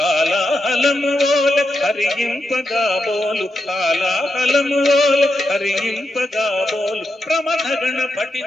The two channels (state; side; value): normal; both; correlation 0.86